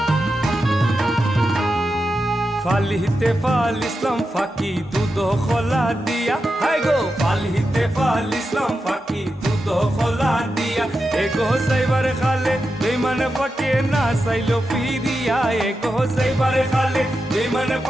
ফালিতে ফালিসলাম ফাঁকি দুধ খোলা দিয়া হাই গো ফালিতে ফালিসলাম ফাঁকি দুধ খোলা দিয়া এগো সাইবার খালে বেমান ফাঁকে না সাইলো ফিরিয়া এগো সাইবার খালে বেমান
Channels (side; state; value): both; normal; correlation 0.89